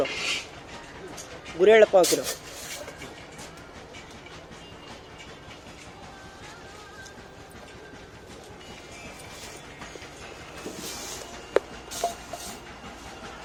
ಗುರೆಳ್ಳು ಪಾವು ಕಿಲೋ,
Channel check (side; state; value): both; identical; correlation 1.00